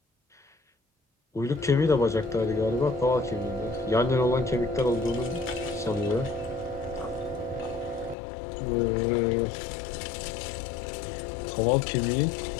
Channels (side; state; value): right; drops out; at 8.2 s